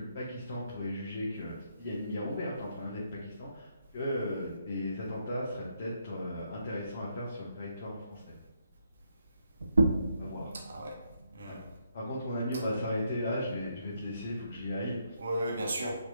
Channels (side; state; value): both; inverted; correlation -0.77